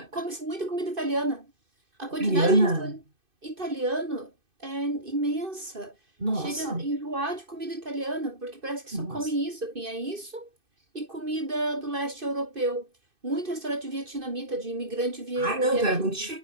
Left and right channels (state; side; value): late; left; 2.6 ms